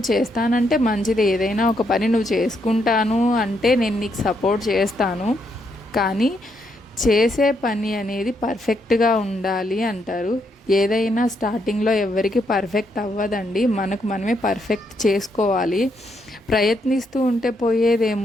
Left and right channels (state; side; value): normal; both; correlation 0.77